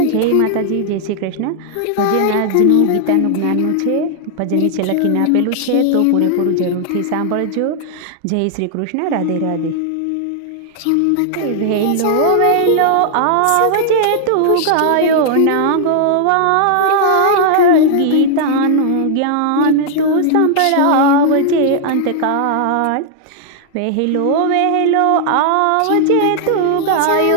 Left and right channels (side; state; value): both; different; correlation 0.00